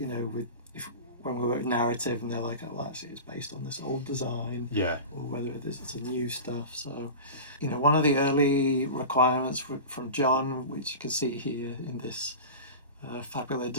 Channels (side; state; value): both; inverted; correlation -0.30